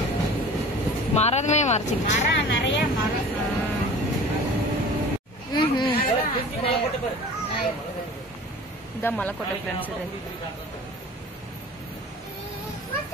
மரமே மறைச்சிருச்சு. நிறைய மரம். இதான் மலைக்கோட்டை ஃப்ரெண்ட்ஸ். இது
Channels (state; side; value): normal; both; correlation 0.42